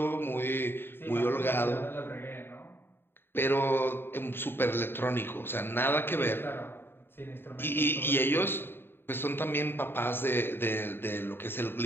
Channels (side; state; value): right; late; 0.11 ms